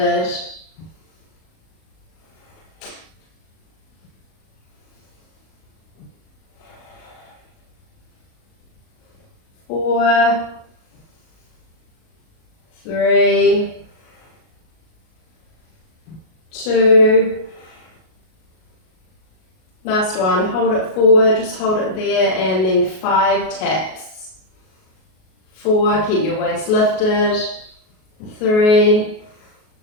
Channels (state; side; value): late; right; 38 ms